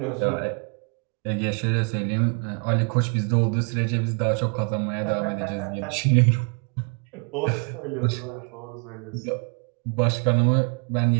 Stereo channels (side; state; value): left; quieter; 37.7 dB